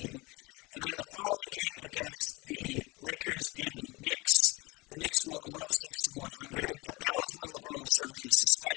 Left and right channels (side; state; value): right; quieter; 24.3 dB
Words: And then the following game against the Lakers and the Knicks won 106-100. But that was when LeBron was serving his